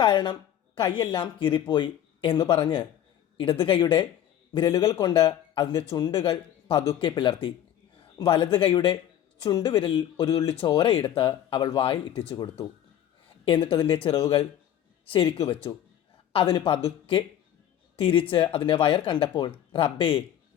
കൈയെല്ലാം കീറിപ്പോയി എന്ന് പറഞ്ഞ് ഇടത് കൈയുടെ വിരലുകൾ കൊണ്ട് അതിൻ്റെ ചുണ്ടുകൾ പതുക്കെ പിളർത്തി. വലത് കൈയുടെ ചുണ്ടുവിരലിൽ ഒരു തുള്ളി ചോരയെടുത്ത് അവൾ വായിൽ ഇറ്റിച്ചു കൊടുത്തു. എന്നിട്ടതിൻ്റെ ചിറവുകൾ ശരിക്കു വെച്ചു. അതിന് പതുക്കെ തിരിച്ച് അതിൻ്റെ വയർ കണ്ടപ്പോൾ റബ്ബേ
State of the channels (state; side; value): quieter; right; 10.8 dB